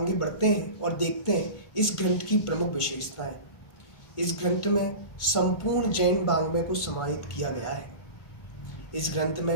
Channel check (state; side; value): late; right; 1.4 ms